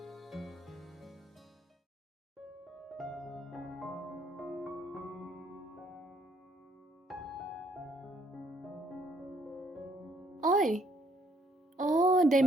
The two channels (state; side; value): normal; both; correlation 0.67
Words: Oi. Oh, đây